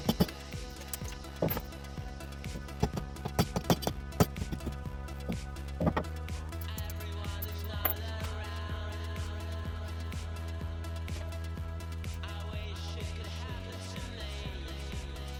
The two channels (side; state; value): both; identical; correlation 1.00